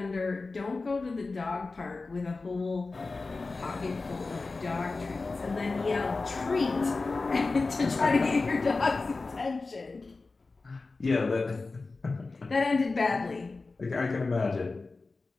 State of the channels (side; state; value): right; quieter; 3.8 dB